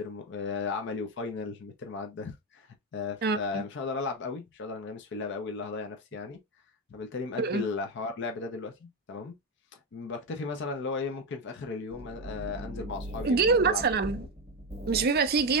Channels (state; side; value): normal; both; correlation 0.11